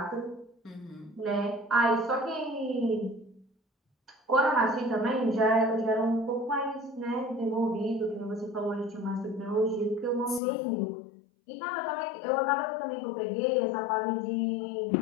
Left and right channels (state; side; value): drops out; right; at 10.4 s